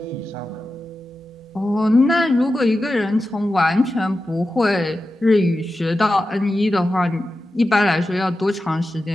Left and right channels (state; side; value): normal; both; correlation 0.92